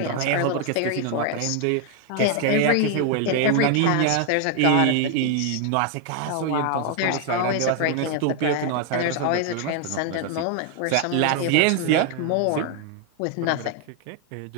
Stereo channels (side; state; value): both; different; correlation 0.00